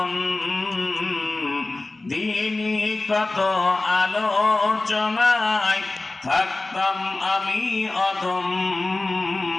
দিনী কত আলোচনায় থাকতাম আমি অধম,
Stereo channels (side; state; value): right; quieter; 3.1 dB